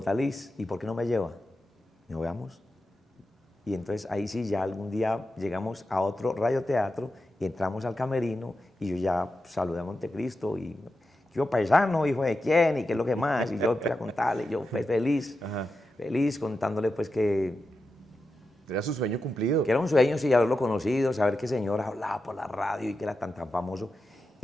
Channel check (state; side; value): normal; both; correlation 0.90